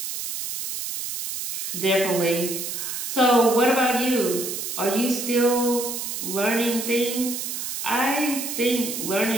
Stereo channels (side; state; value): right; noise; hiss, 5 dB below the sound